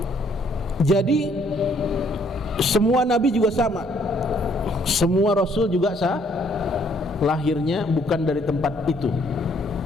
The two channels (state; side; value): normal; both; correlation 0.66